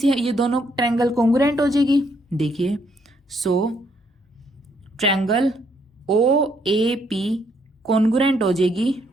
ये दोनों ट्रायंगल कॉन्ग्रुएंट हो जाएगी। देखिए सो triangle O A P congruent हो जाएगी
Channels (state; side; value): normal; both; correlation 0.71